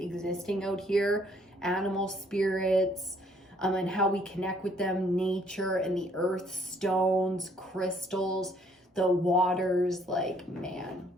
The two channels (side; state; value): both; normal; correlation 0.64